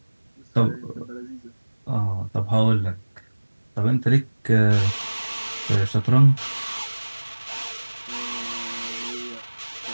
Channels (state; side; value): inverted; both; correlation -1.00